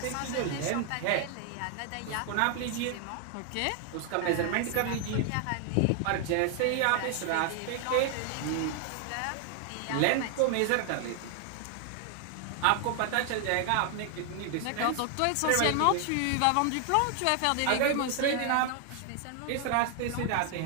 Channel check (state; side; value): different; both; correlation 0.00